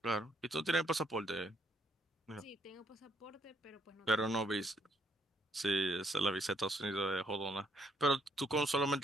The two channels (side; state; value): both; normal; correlation 0.70